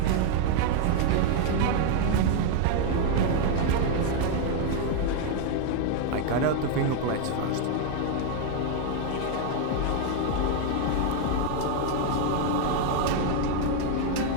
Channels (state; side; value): different; both; correlation 0.00